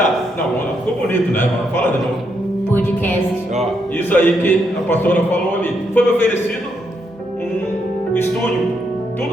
não, ficou bonito, né? Fala de novo. Podcast. Ó, isso aí que a pastora falou ali. Foi me oferecido um estúdio.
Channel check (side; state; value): both; normal; correlation 0.78